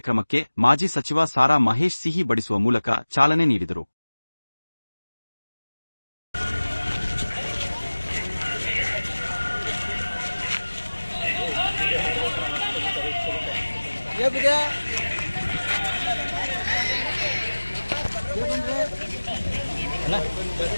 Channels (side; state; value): both; inverted; correlation -1.00